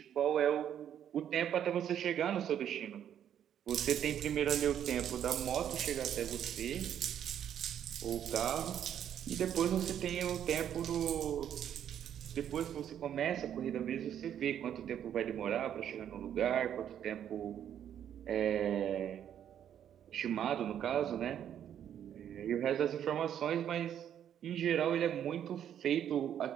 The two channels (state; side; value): quieter; left; 9.8 dB